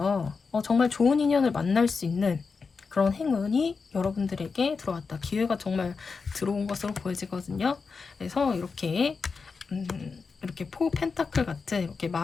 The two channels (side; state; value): right; quieter; 4.9 dB